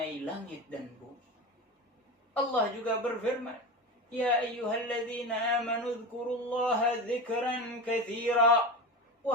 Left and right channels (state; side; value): normal; both; correlation 0.24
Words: langit dan bumi. Allah juga berfirman, "Ya ayyuhalladzina amanu dzkurullaha dzikran katsira."